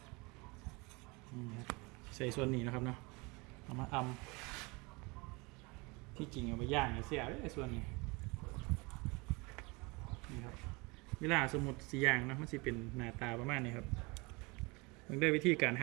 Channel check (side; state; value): left; quieter; 26.9 dB